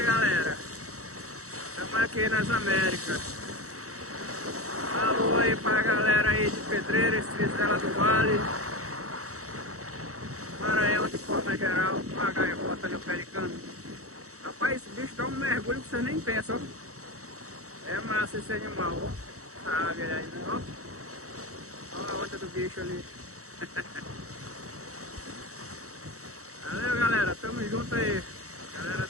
galera, estamos aqui nas Américas. Alô aí pra galera aí de Pedreiras, Tristela do Vale, Maranhão de forma geral, a gaivota ali, o pelicano. Rapaz, esse bicho dá um mergulho que você nem pensa, ó. É massa esse animal, ó. Sabe aí, né, ó. Olha a onda do bicho ali. Valeu, galera, tamo junto aí. Galera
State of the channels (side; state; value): left; late; 0.65 ms